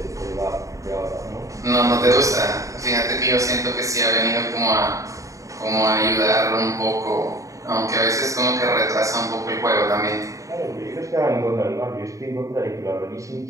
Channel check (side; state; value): left; late; 0.16 ms